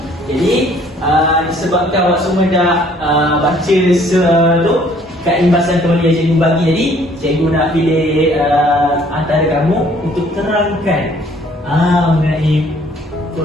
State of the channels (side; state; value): both; normal; correlation 0.59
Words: Jadi, disebabkan awak semua dah baca tu kat imbasan teori yang cikgu bagi tadi, cikgu nak pilih antara kamu untuk terangkan mengenai